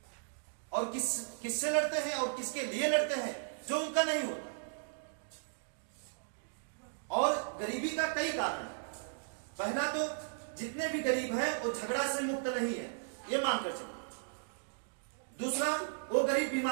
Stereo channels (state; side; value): silent; left; digital silence